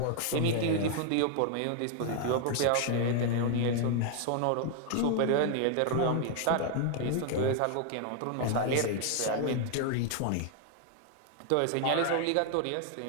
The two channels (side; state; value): both; different; correlation 0.00